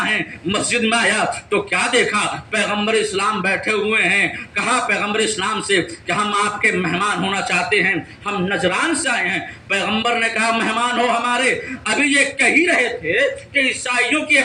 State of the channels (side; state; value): both; identical; correlation 1.00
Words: ہیں. مسجد میں آیا تو کیا دیکھا, پیغمبر اسلام بیٹھے ہوئے ہیں. کہا پیغمبر اسلام سے کہ ہم آپ کے مہمان ہونا چاہتے ہیں, ہم نجران سے آئے ہیں. پیغمبر نے کہا مہمان ہو ہمارے. ابھی یہ کہہ ہی رہے تھے کہ عیسائیوں کی